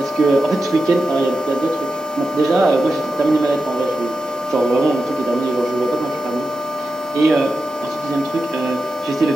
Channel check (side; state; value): both; normal; correlation 0.90